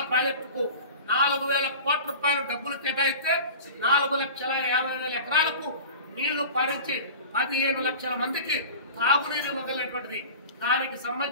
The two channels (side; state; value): both; inverted; correlation -0.37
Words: ప్రాజెక్టుకు 4,000 కోట్ల రూపాయలు డబ్బులు కేటాయిస్తే 4,50,000 ఎకరాలకు నీళ్లు పారించి 15 లక్షల మందికి తాగునీరు ఇవ్వగలిగినటువంటిది. దానికి